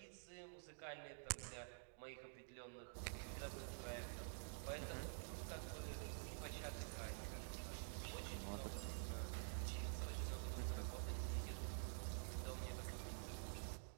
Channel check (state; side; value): silent; left; digital silence